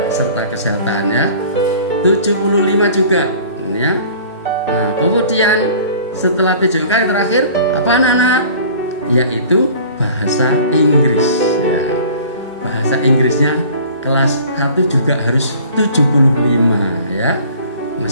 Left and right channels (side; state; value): both; inverted; correlation -0.47